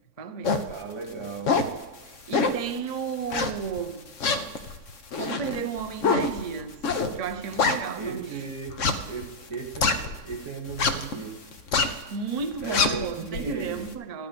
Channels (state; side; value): late; right; 3.6 ms